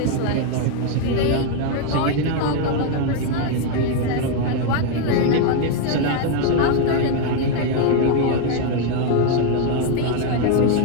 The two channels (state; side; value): different; both; correlation 0.01